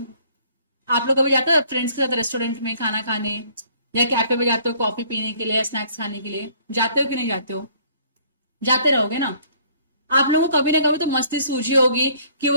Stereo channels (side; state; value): both; inverted; correlation -0.59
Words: आप लोग कभी जाते हो फ्रेंड्स के साथ रेस्टोरेंट में खाना खाने या कैफे में जाते हो कॉफी पीने के लिए या स्नैक्स खाने के लिए, जाते हो कि नहीं जाते हो? जाते रहोगे ना. आप लोगों को कभी ना कभी तो मस्ती सूझी होगी कि